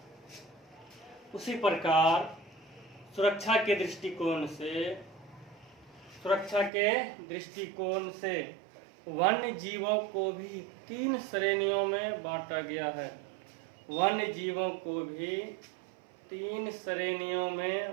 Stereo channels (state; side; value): drops out; left; at 6.7 s